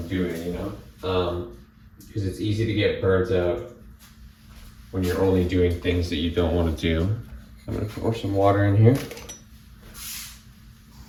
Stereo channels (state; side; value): identical; both; correlation 1.00